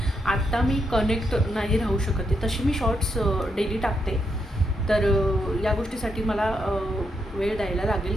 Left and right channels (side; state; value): both; normal; correlation 0.80